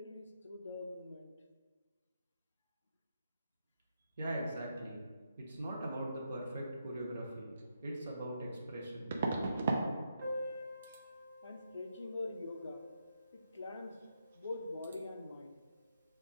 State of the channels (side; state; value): both; inverted; correlation -0.81